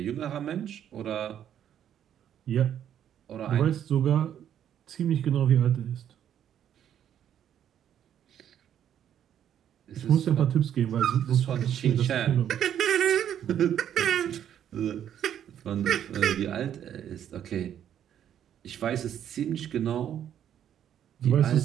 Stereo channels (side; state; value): left; quieter; 9.9 dB